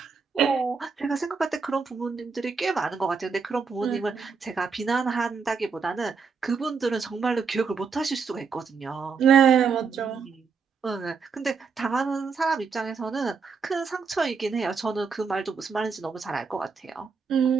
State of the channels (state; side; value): quieter; left; 5.4 dB